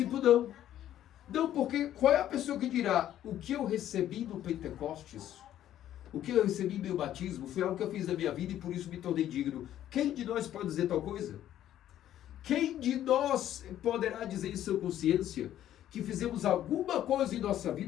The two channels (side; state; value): right; quieter; 11.9 dB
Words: não. Não, porque qual é a pessoa que dirá o que eu recebi no Pentecostes? O que eu recebi em meu batismo foi algo que eu fiz na minha vida e por isso me tornei digno. Quem de nós pode dizer tal coisa? Quem de nós poderá dizer em sua consciência que fizemos alguma coisa em nossa